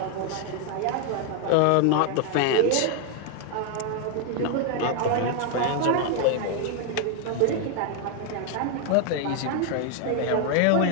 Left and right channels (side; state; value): both; different; correlation 0.01